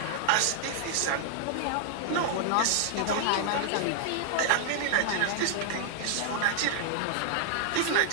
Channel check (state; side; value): different; both; correlation 0.00